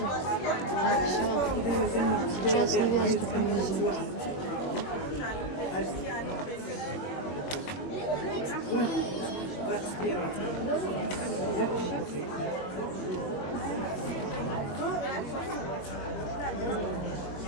Сейчас невесту привезут.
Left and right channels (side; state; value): right; late; 22 ms